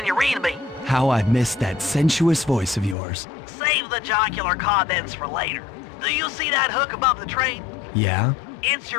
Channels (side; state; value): right; drops out; at 3.0 s